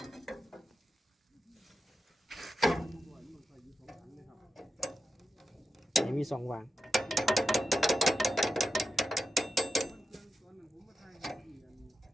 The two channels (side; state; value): both; normal; correlation 0.89